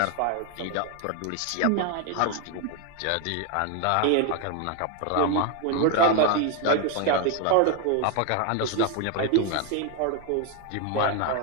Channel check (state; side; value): different; both; correlation 0.01